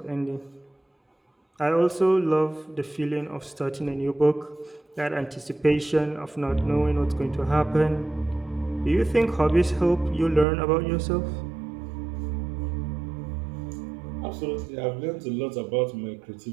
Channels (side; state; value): left; drops out; at 10.5 s